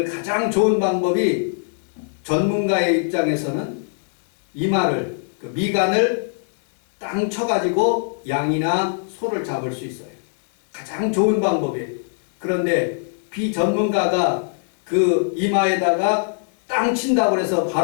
가장 좋은 방법이 전문가의 입장에서는 이마를 그 미간을 땅 쳐가지고 양이나 소를 잡을 수 있어요. 가장 좋은 방법이에요. 그런데 비전문가가 그 이마에다가 땅 친다고 해서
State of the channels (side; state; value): right; silent; 65 dB below the other